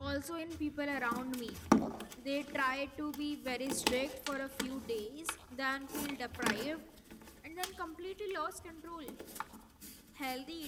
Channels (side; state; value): both; identical; correlation 1.00